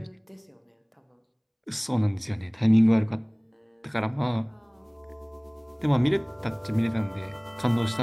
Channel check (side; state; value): both; identical; correlation 1.00